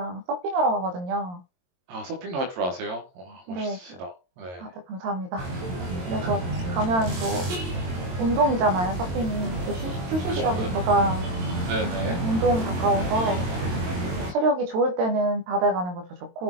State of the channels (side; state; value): left; late; 22 ms